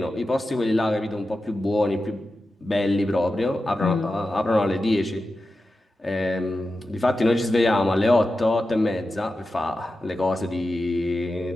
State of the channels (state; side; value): normal; both; correlation 0.92